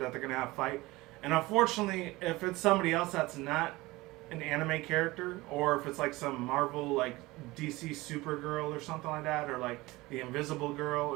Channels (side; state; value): left; quieter; 20.5 dB